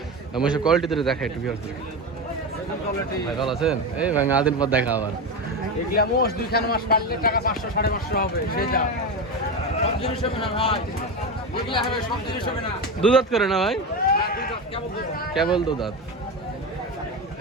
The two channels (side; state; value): both; normal; correlation 0.19